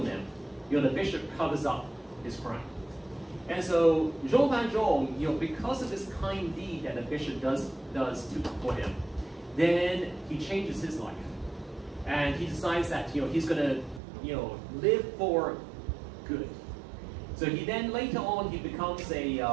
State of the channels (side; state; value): left; drops out; at 14.0 s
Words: them, the bishop covers up his crime. And so Jean Valjean, because of this kind deed that the bishop does for him, then he changes his life. And he decides that, he's going to, live for good. So he then, later on, he becomes